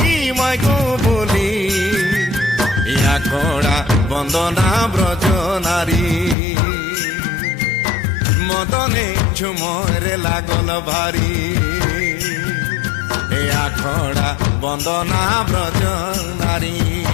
মাইগো বলি, আখড়া বন্দনা ব্রজ নারী মদনে ঝুমরে লাগল ভারী, আখড়া বন্দনা ব্রজ নারী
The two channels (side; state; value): right; drops out; at 6.4 s